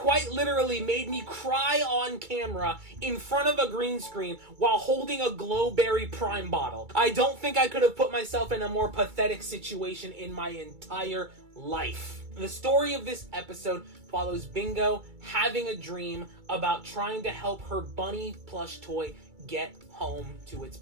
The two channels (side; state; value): left; late; 2.3 ms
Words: literally made me cry on camera in front of a green screen while holding a Glowberry Prime bottle. I don't think I could have put myself in a more pathetic situation in my entire life. The story of this episode follows Bingo having a dream about trying to help her bunny plush toy get home to its